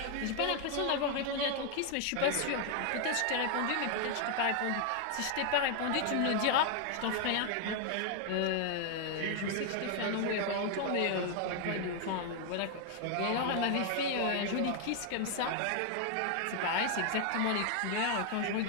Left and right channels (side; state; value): both; different; correlation 0.00